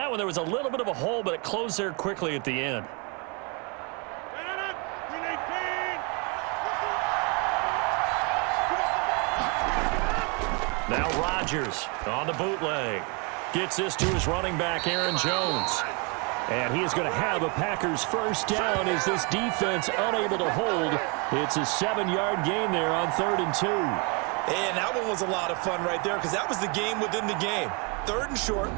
one, there was a little bit of a hole, but it closed there quickly at the end. Now Rodgers on the bootleg. Gets this to his running back, Aaron Jones. And he is going to have a Packers first down as this defense unable to hold. It's a 7-yard gain there on 3rd and 2. And that one was a lot of fun right there because that was the game within the game. 3rd and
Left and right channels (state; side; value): quieter; left; 32.5 dB